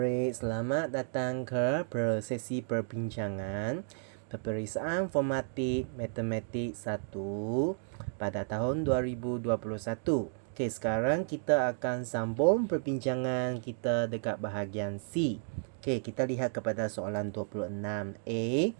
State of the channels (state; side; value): silent; left; digital silence